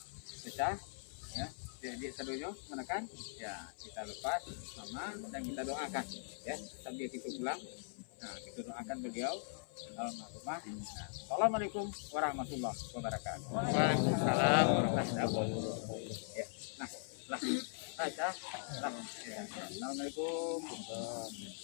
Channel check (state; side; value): silent; right; 51 dB below the other